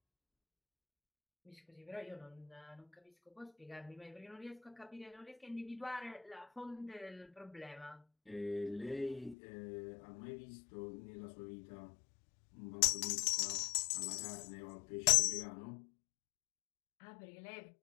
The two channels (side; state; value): right; drops out; at 9.3 s